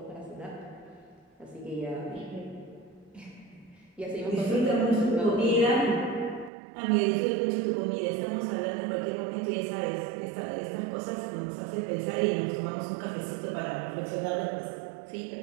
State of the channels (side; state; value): left; drops out; at 6.5 s